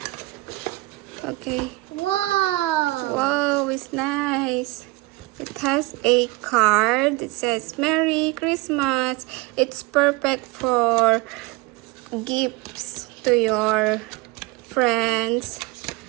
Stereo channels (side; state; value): left; quieter; 22.2 dB